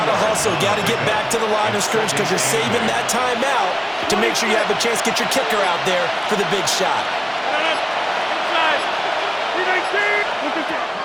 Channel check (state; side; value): identical; both; correlation 1.00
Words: to hustle. Got to get back to the line of scrimmage because you're saving that timeout to make sure you have a chance to get your kicker out there for the big shot.